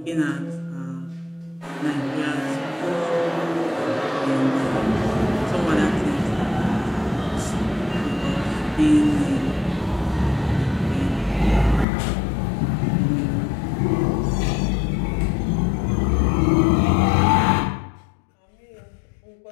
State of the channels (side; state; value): right; drops out; at 11.9 s